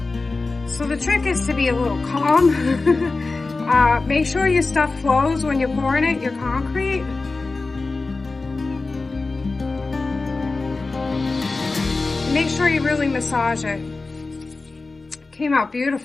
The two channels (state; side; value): quieter; right; 3.6 dB